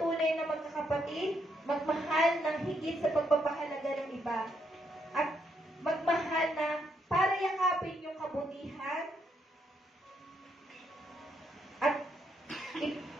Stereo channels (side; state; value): both; normal; correlation 0.76